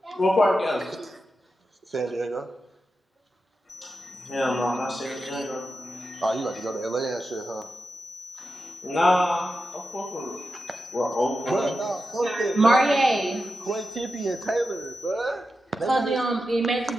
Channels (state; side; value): normal; both; correlation 0.90